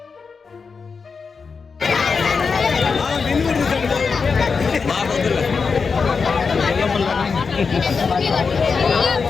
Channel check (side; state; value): right; quieter; 5.2 dB